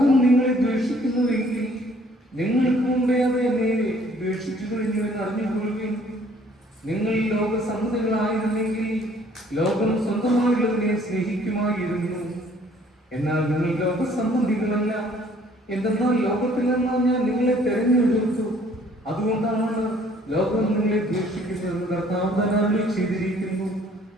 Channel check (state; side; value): normal; both; correlation 0.59